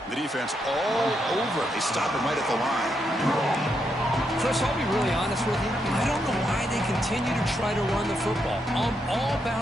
The defense all over. They stop him right at the line. Chris, I'll be really honest with you. I don't know why they continue to try to run the football. I'm all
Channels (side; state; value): both; normal; correlation 0.80